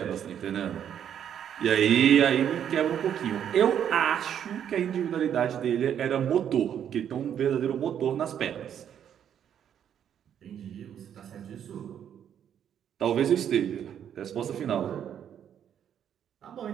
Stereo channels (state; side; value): quieter; left; 9.3 dB